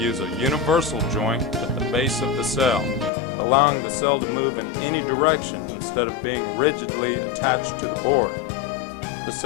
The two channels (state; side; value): drops out; right; at 3.1 s